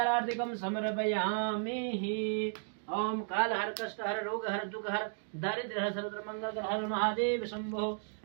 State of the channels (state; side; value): silent; left; digital silence